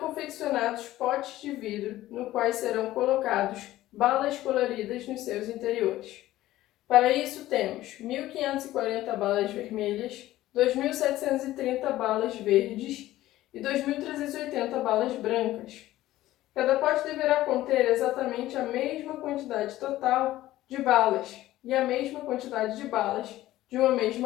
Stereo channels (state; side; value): quieter; right; 15.4 dB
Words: potes de vidro no quais serão colocados balas coloridas nos seus interiores. Para isso temos 1.540 balas vermelhas, 2.730 balas verdes e 2.380 balas brancas. Cada pote deverá conter exatamente a mesma quantidade total de balas e a mesma quantidade de balas de uma